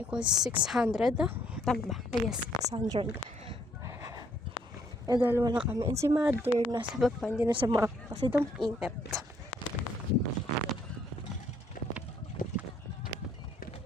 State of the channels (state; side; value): normal; both; correlation 0.66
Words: 600. Tama ba? Yes, 600. Eh, dalawa lang kami. And si mother, nasa baba, hindi na sa mga kasi daw ingat.